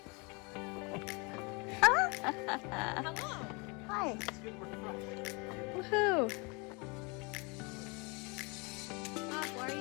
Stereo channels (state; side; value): quieter; right; 29.9 dB